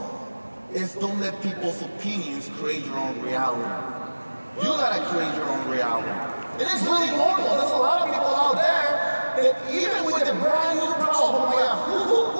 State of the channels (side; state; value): both; inverted; correlation -1.00